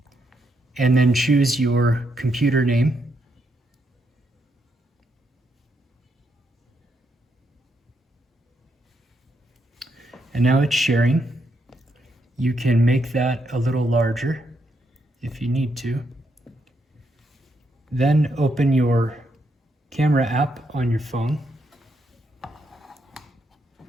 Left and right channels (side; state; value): both; normal; correlation 0.79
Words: and then choose your computer name. And now it's sharing. You can make that a little larger if you need to. Then open your camera app on your phone.